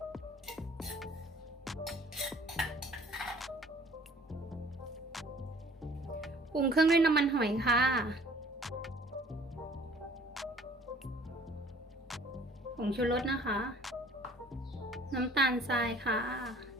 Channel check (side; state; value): both; normal; correlation 0.54